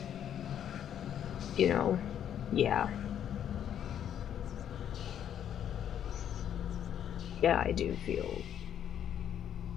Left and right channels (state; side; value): quieter; right; 9.7 dB